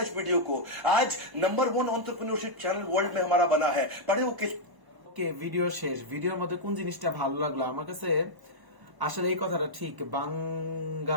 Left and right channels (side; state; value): left; late; 1.0 ms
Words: वीडियो को। आज नंबर 1 एंटरप्रेन्योरशिप चैनल वर्ल्ड में हमारा बना है। पढ़े वो किस ভিডিও শেষ। ভিডিওর মধ্যে কোন জিনিসটা ভালো লাগলো আমার কাছে, আসলে এই কথাটা ঠিক,